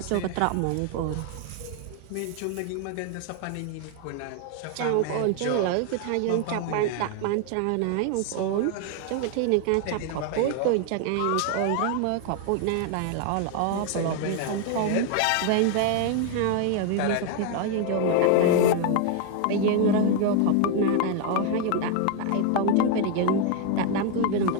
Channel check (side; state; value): both; different; correlation 0.00